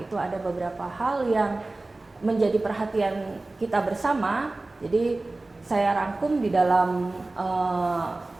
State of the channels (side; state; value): left; quieter; 3.0 dB